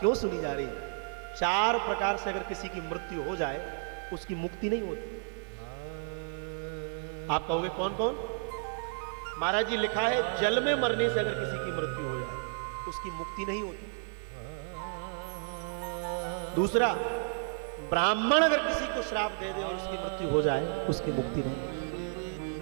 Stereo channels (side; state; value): left; silent; 56 dB below the other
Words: सुनी जा रही है? 4 प्रकार से अगर किसी की मृत्यु हो जाए उसकी मुक्ति नहीं होती। आप कहोगे कौन कौन? महाराज जी लिखा है जल में मरने से अगर किसी की मृत्यु हो जाए उसकी मुक्ति नहीं होती। दूसरा, ब्राह्मण अगर किसी को श्राप दे दे और उसकी मृत्यु हो जाए उसकी मुक्ति नहीं।